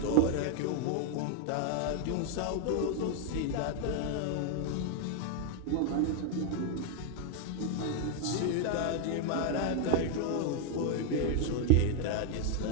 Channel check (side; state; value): both; different; correlation 0.00